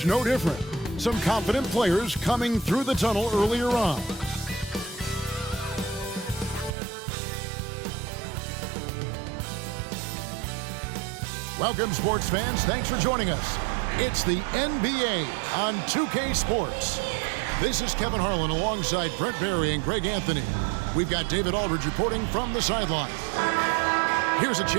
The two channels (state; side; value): drops out; left; at 6.7 s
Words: no different. Some confident players coming through the tunnel earlier on. Welcome, sports fans. Thanks for joining us. It's the NBA on 2K Sports. This is Kevin Harlan alongside Brett Barry and Greg Anthony. We've got David Aldridge reporting from the sideline. Here's a